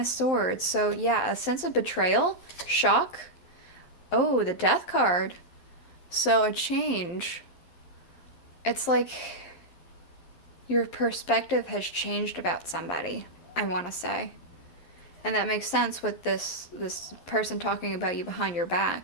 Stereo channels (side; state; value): right; late; 11 ms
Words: Swords. So yeah, a sense of betrayal, shock. Oh, the Death card. So a change. It's like your perspective has changed about somebody, I want to say. And that makes sense with this person talking about you behind your